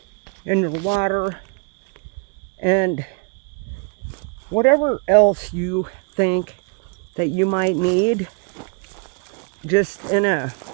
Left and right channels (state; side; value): quieter; left; 35.9 dB